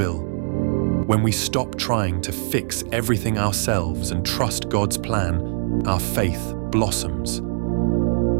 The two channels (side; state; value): left; silent; digital silence